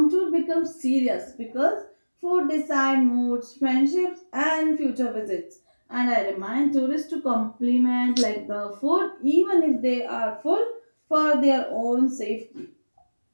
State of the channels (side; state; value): both; inverted; correlation -1.00